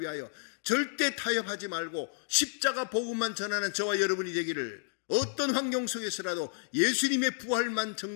위하여 절대 타협하지 말고 십자가 복음만 전하는 저와 여러분이 되기를, 어떤 환경 속에서라도 예수님의 부활만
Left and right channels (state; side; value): silent; right; digital silence